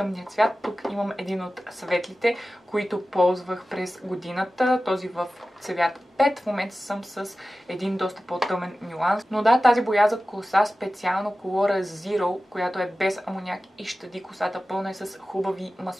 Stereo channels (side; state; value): both; normal; correlation 0.95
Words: цвят. Тук имам един от светлите, които ползвах през годината. Този в цвят 5. В момента съм с един доста по-тъмен нюанс. Но да, тази боя за коса, специално Colora Zero, която е без амоняк и щади косата, пълна е с хубави